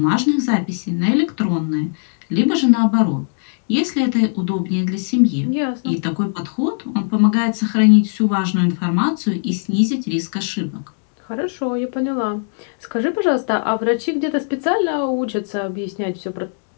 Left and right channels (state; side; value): silent; right; digital silence